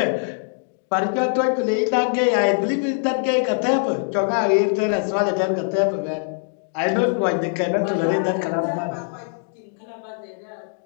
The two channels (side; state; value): right; silent; digital silence